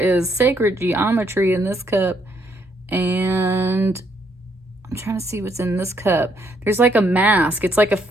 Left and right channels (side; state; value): both; normal; correlation 0.72